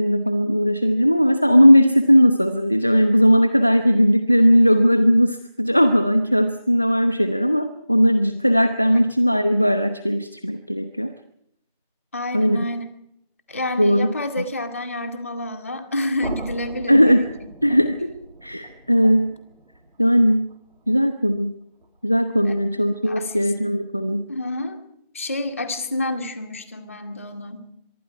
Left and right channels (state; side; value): inverted; both; correlation -0.96